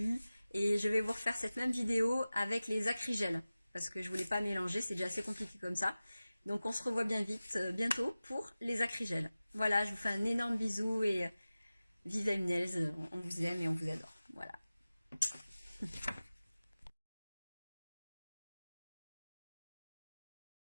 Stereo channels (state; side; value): inverted; both; correlation -0.97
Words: et je vais vous refaire cette même vidéo avec les acrygels, parce que je voulais pas mélanger, c'est déjà assez compliqué comme ça. Donc on se revoit bien vite, bientôt pour les acrygels. Voilà, je vous fais un énorme bisou et vive M Nails, on vous aime et on vous adore. Voilà.